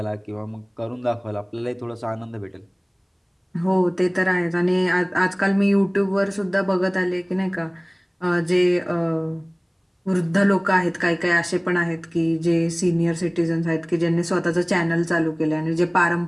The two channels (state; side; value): identical; both; correlation 1.00